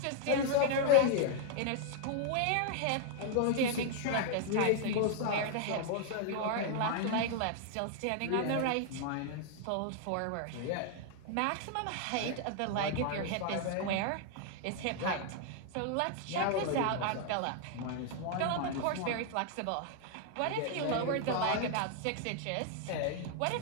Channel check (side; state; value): both; different; correlation 0.00